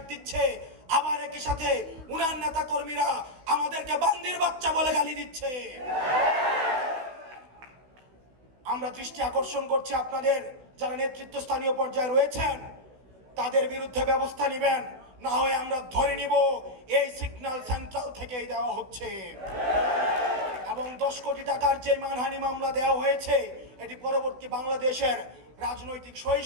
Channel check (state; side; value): late; left; 16 ms